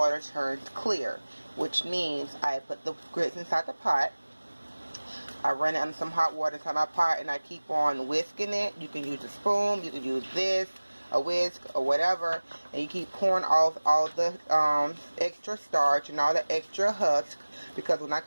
turns clear, which means I put the grits inside the pot. I run it under some hot water inside my pot, and I keep on whisking it. You can use a spoon, you can use this, a whisk, or whatever, and you keep pouring off all the extra starch and all the extra husk, because when I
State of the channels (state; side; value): inverted; both; correlation -1.00